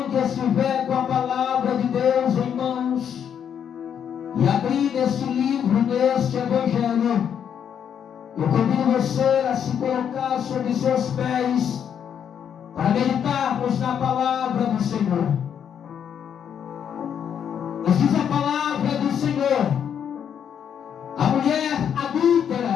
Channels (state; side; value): quieter; right; 8.4 dB